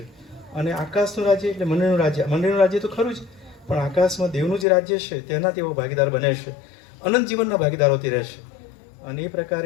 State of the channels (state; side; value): drops out; right; at 4.7 s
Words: અને આકાશનું રાજ્ય એટલે મંડળનું રાજ્ય, મંડળનું રાજ્ય તો ખરું જ, પણ આકાશમાં દેવનું જે રાજ્ય છે તેના તેઓ ભાગીદાર બને છે, અનંત જીવનના ભાગીદારોથી રહેશે. અને એ